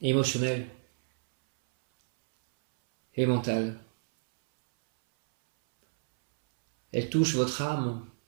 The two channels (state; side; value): silent; left; 59 dB below the other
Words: émotionnels et mentaux. Elle touche votre âme.